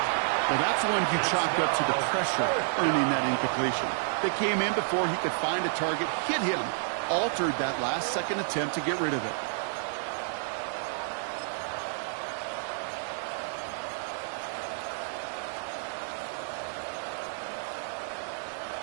Well, that's one you chalk up to the pressure earning that incompletion. They came in before he could find a target, hit him, altered that last-second attempt to get rid of it.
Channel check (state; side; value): silent; left; digital silence